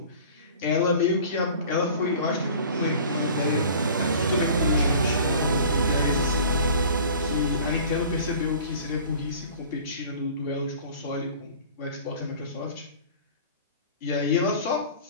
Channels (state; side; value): inverted; both; correlation -0.43